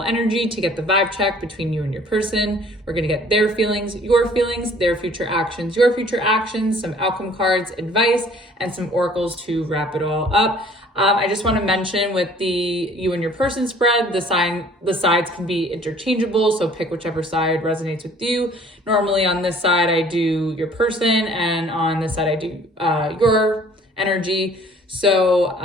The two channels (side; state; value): both; normal; correlation 0.54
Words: energy to get the vibe check between you and your person. We're going to get their feelings, their future actions, your future actions, some outcome cards, advice, and some oracles to wrap it all up. I just want to mention with the you and your person spread, the sides can be interchangeable, so pick whichever side resonates with you. Normally on this side, I do your person, and on this side, I do your energy.